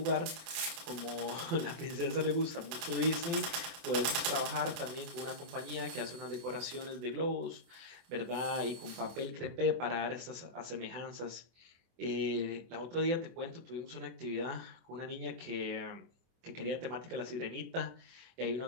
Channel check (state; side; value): late; left; 24 ms